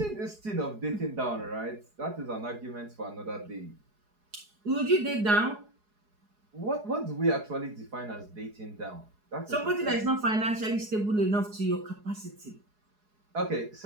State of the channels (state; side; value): late; left; 4.8 ms